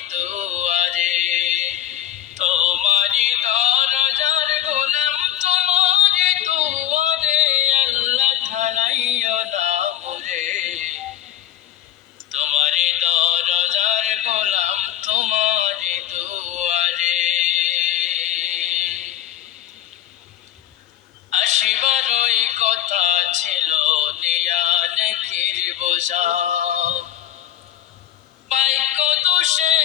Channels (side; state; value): right; quieter; 11.8 dB